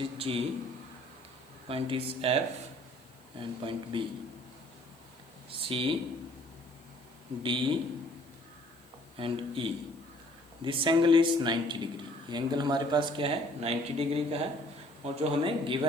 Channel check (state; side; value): noise; left; hiss, 29 dB below the sound